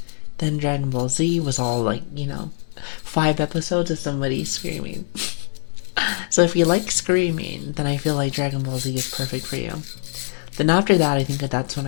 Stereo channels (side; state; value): right; silent; 64 dB below the other